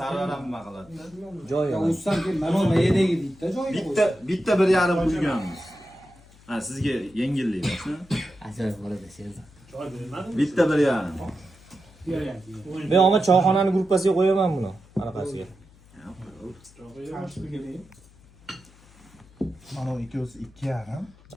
Sarvaram nima qiladi? Joyiga. Ussam keyin mana mayadagi bitta joyiga qo'ying. Bitta 1,5 qo'yganmiz. Ha, sizga yengillik bo'lsin. Ajoyib bo'ladi Sherzod. Bitta 1,5. Men omad choyxonani gruppasiga qo'yaman buni. Anaqasiga. Mana ikkovsi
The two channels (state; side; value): noise; left; hum, 26 dB below the sound